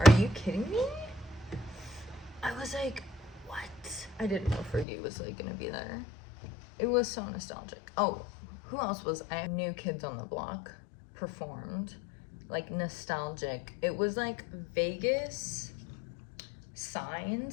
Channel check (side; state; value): right; drops out; at 4.9 s